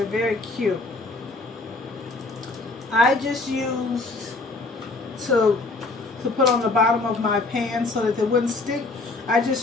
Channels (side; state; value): right; quieter; 3.4 dB